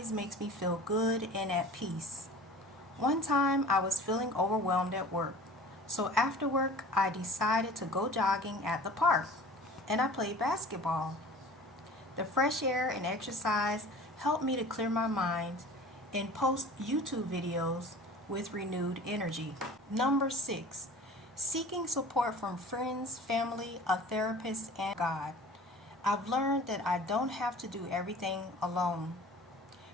makes me feel good and at peace. One time I was feeling overwhelmed at work, so after work I decided to go jogging at the park, and I played basketball. The fresh air and exercise helped me to clear my mind and post YouTube videos with renewed energy. Number 6, seeking support from friends, family, a therapist, and God. I've learned that I don't have to do everything alone.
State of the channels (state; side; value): normal; both; correlation 0.42